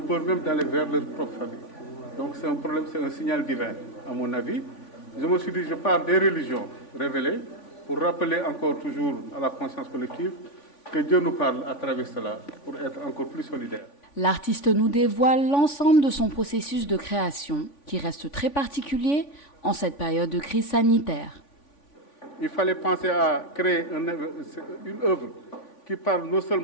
même d'aller vers leur propre famille. Donc c'est un problème, c'est un signal divin, à mon avis. Je me suis dit, je parle des religions révélées pour rappeler encore toujours à la conscience collective que Dieu nous parle à travers cela pour être encore plus solidaires. L'artiste nous dévoile l'ensemble de son processus de création qui reste très particulier en cette période de crise sanitaire. Il fallait penser à créer une œuvre qui parle non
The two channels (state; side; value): late; right; 3.5 ms